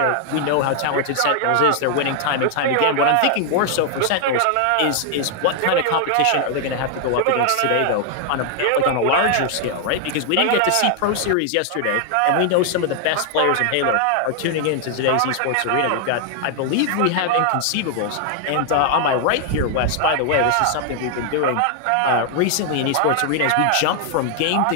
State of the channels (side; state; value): both; different; correlation 0.00